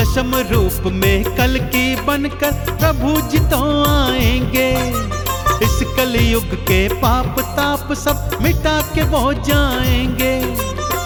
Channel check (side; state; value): both; identical; correlation 1.00